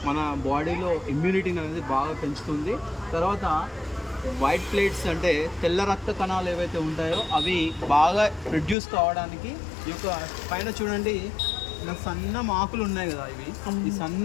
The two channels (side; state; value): right; drops out; at 8.8 s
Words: మన బాడీలో ఇమ్యూనిటీని అనేది బాగా పెంచుతుంది. తర్వాత వైట్ ప్లేట్స్ అంటే తెల్ల రక్త కణాలు ఏవైతే ఉంటాయో అవి బాగా ప్రొడ్యూస్ కావడానికి ఈ యొక్క పైన చూడండి, ఇలా సన్న ఆకులు ఉన్నాయి కదా. ఈ